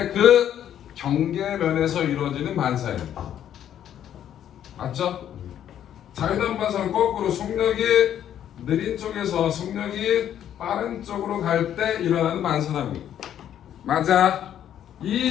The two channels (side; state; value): right; quieter; 10.4 dB